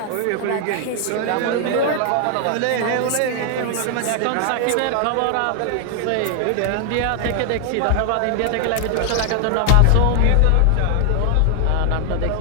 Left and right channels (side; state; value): both; different; correlation 0.00